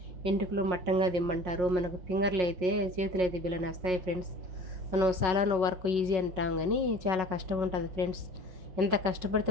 ఇంటికలు మట్టంగా దిమ్మంటారు. మనకు ఫింగర్లు అయితే చేతులు అయితే బిల్లని వస్తాయి ఫ్రెండ్స్. మనం సలాను వర్క్ ఈజీ అంటాం కానీ చాలా కష్టం ఉంటుంది ఫ్రెండ్స్. ఎంత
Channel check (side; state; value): left; late; 5.4 ms